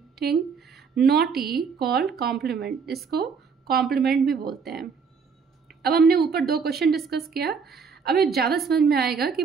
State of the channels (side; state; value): left; quieter; 5.7 dB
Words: not E called complement. इसको complement भी बोलते हैं। अब हमने ऊपर 2 क्वेश्चन डिस्कस किया, अब ये ज़्यादा समझ में आएगा कि